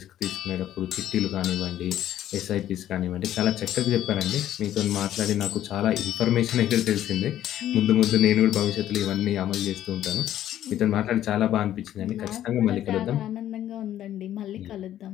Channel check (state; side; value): quieter; right; 12.0 dB